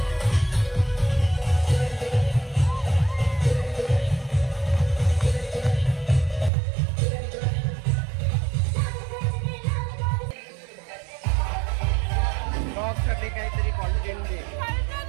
काहीतरी कॉन्टेंट दे.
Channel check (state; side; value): drops out; left; at 6.5 s